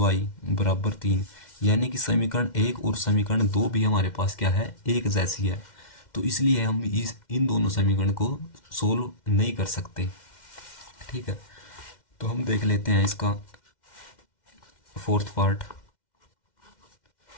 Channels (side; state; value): right; late; 2.1 ms